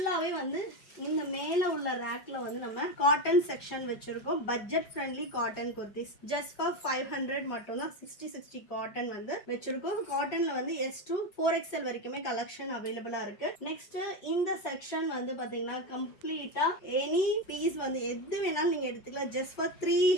வந்து இந்த மேலே உள்ள ரேக்கில் வந்து நம்ம காட்டன் செக்ஷன் வச்சுருக்கோம். Budget friendly cotton kurtis just for 500 மட்டும்தான். 60 காட்டன் வந்து வச்சுருக்கோம். காட்டனில் வந்து S to 4XL வரைக்குமே கலெக்ஷன் அவைலபிளாக இருக்குது. நெக்ஸ்ட் இந்த செக்ஷன் வந்து பார்த்தீங்கன்னா கம்ப்ளீட்டாக எனி பீஸ் வந்து எது வேணாலும் நீங்கள் எடுத்துக்கலாம். Just for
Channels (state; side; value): late; right; 5.3 ms